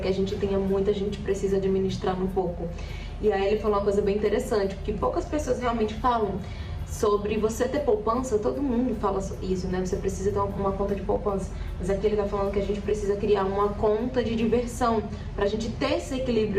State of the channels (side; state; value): both; identical; correlation 1.00